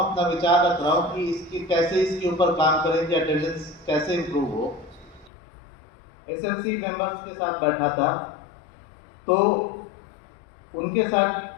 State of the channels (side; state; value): right; drops out; at 5.3 s